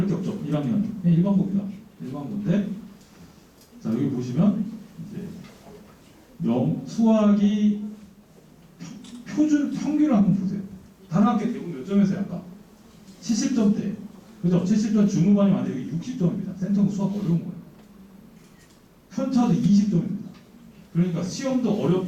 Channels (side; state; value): both; identical; correlation 1.00